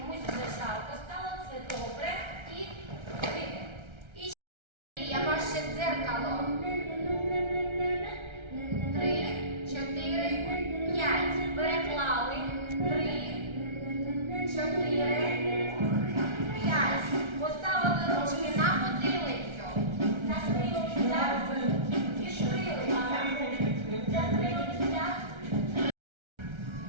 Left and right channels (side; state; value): left; late; 1.3 ms